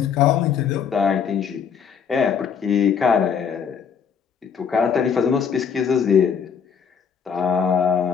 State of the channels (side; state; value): right; quieter; 7.0 dB